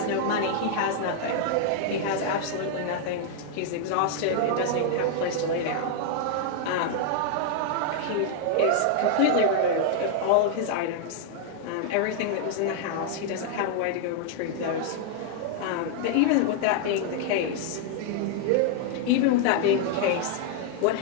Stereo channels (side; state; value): both; different; correlation 0.00